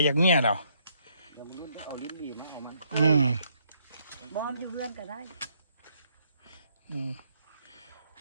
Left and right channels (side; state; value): both; inverted; correlation -0.71